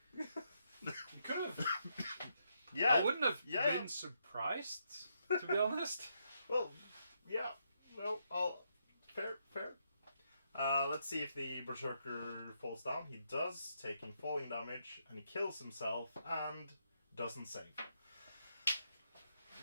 could have. Yeah. I wouldn't have yeah. been surprised, to be honest. Well, yeah. Well, fair. Let's see if the Berserker falls down. He does, taking falling damage, and he kills himself and doesn't save.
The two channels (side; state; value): both; inverted; correlation -0.78